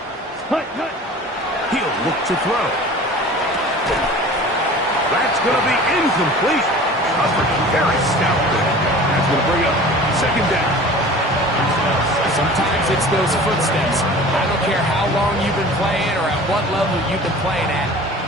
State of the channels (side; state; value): both; normal; correlation 0.42